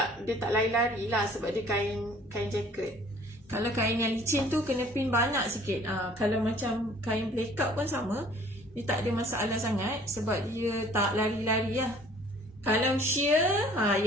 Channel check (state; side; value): normal; both; correlation 0.54